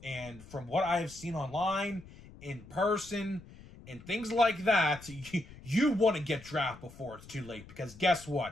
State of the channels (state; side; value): noise; left; rumble, 19 dB below the sound